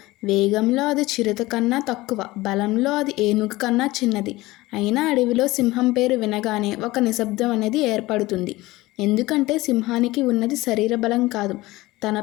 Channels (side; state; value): right; quieter; 19.4 dB